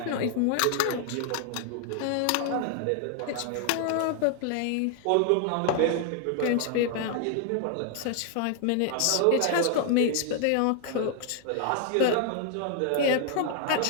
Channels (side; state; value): both; different; correlation 0.00